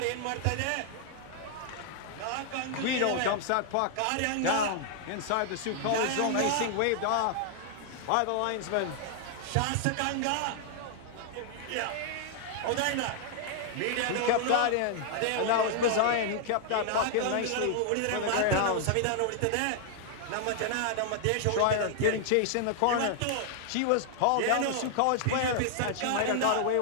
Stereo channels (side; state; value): both; different; correlation 0.00